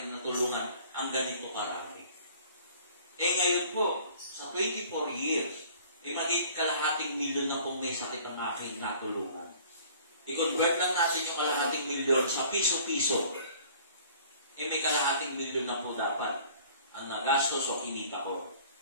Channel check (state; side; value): inverted; both; correlation -0.51